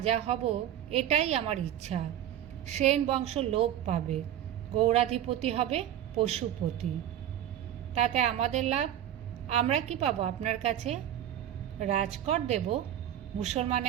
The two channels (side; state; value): left; quieter; 11.2 dB